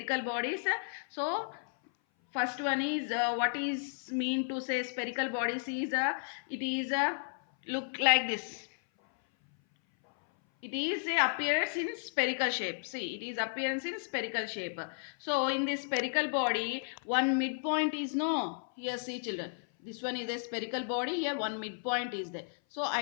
bodies. So first one is what is mean to say spherical bodies is it is look like this. It is a appearance in spherical shape. See, it is appearance in spherical shape. So in this spherical body, one midpoint is no. Here see children. This one is a spherical body. Here one midpoint is there. So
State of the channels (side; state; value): right; silent; 56 dB below the other